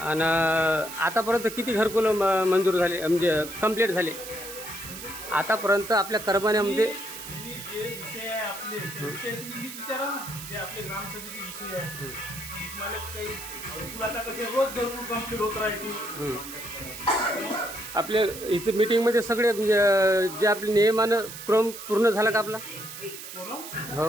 आतापर्यंत किती घरकुलं मंजूर झाले, म्हणजे कंप्लीट झाले आतापर्यंत आपल्या करमान्यामध्ये? जे विषय आहे आपले त्या विषयाची नीट विचारा ना, जे आपले ग्रामसभेचे विषय आहे. मला काही तुला आता कसे रोज घरकुल कंप्लीट होत राहतील. आपले इथे मीटिंगमध्ये सगळे जे आपले नियमानं क्रम पूर्ण झाला का आपला?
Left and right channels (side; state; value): right; noise; hiss, 11 dB below the sound